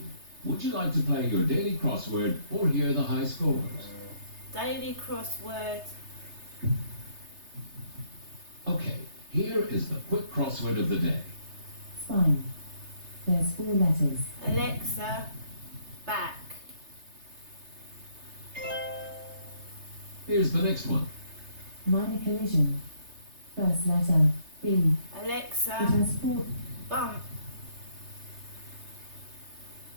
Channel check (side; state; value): left; late; 3.3 ms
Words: Would you like to play your daily crossword or hear the high scores? Daily crossword. Okay, here is the quick crossword of the day. Spine. There's 4 letters. Alexa, back. Here's the next one. Minor collision. First letter, B. It Alexa, has 4. bump.